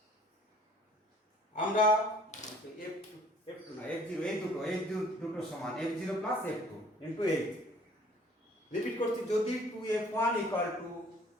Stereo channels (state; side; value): normal; both; correlation 0.55